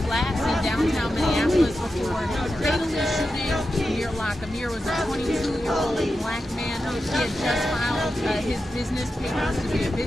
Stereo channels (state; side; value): normal; both; correlation 0.90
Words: Flats in downtown Minneapolis before fatally shooting Amir Locke. Amir was a 22-year-old black man. He had just filed his business papers to be a